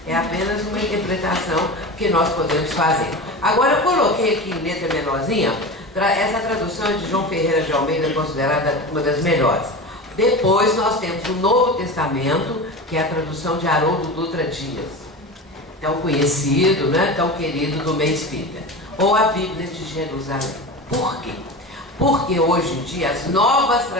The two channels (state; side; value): normal; both; correlation 0.29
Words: É apenas uma interpretação que nós podemos fazer. Agora eu coloquei aqui em letra menorzinha, essa tradução é de João Ferreira de Almeida, considerada uma das melhores. Depois nós temos o Novo Testamento, que é a tradução de Haroldo Dutra Dias, tão conhecido, tão querido do meio espírita. Ou a Bíblia de Jerusalém. Por quê? Porque hoje em dia as novas